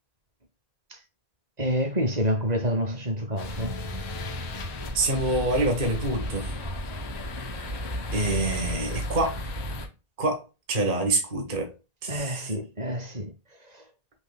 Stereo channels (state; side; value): late; left; 1.8 ms